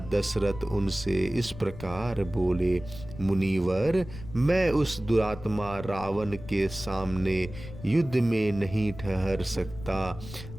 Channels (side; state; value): left; noise; rumble, 13 dB below the sound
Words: दशरथ उनसे इस प्रकार बोले, मुनिवर, मैं उस दुरात्मा रावण के सामने युद्ध में नहीं ठहर सकता।